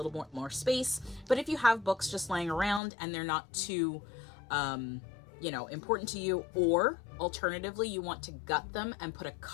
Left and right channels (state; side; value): drops out; right; at 2.8 s